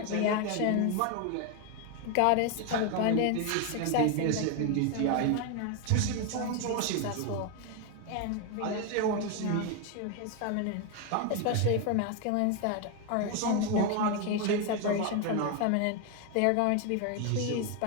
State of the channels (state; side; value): different; both; correlation 0.01